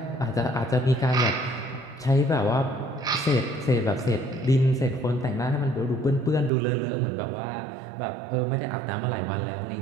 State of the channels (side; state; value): left; drops out; at 6.5 s